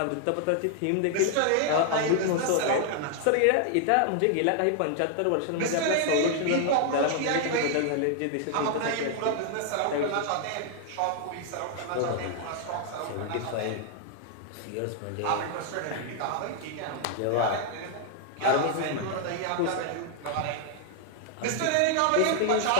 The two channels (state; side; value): different; both; correlation 0.00